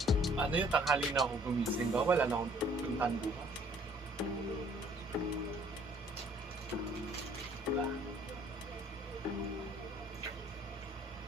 ano yung tanghali na ako gumising ba? Wala na akong puntahan bukas. Diba?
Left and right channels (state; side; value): normal; both; correlation 0.59